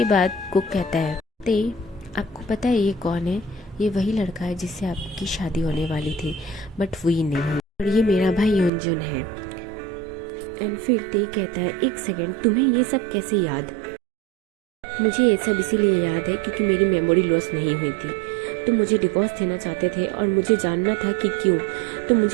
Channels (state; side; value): drops out; left; at 8.7 s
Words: बाद कुक कहता है ते आपको पता है ये कौन है? ये वही लड़का है जिससे आपकी शादी होने वाली थी, बट वही नहीं, और ये मेरा भाई युनजुन है। एंड फिर ते कहता है एक सेकेंड, तुम्हें ये सब कैसे याद? मुझे ये सब इसीलिए याद है क्योंकि मेरी मेमोरी लॉस नहीं हुई थी। तुम मुझे डिवोर्स देना चाहते थे और मुझे जानना था कि क्यों। तुम